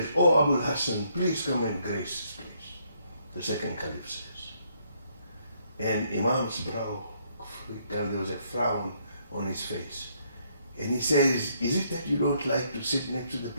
oh, Abul Hassan, please come and grace this place. The second caliph says. And Imam's brow, there was a frown on his face. And he says, is it that you don't like to sit next to the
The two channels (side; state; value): both; inverted; correlation -0.71